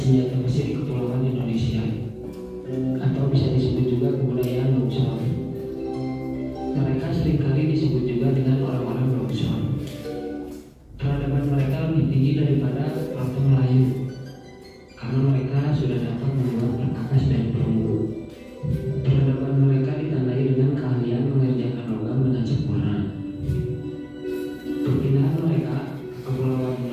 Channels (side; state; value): both; identical; correlation 1.00